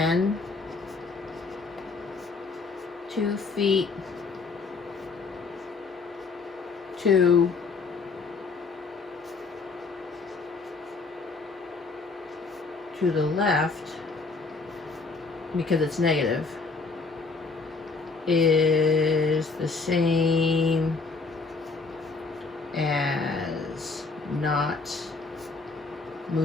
2 feet to the left, because it's negative, is the same as not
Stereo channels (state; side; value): quieter; right; 4.2 dB